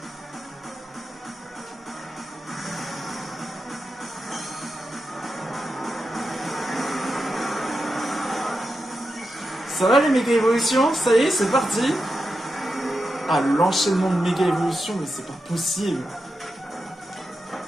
Ça va les méga évolutions? Ça y est, c'est parti. Ah, l'enchaînement de méga évolutions, mais c'est pas possible.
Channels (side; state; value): both; normal; correlation 0.88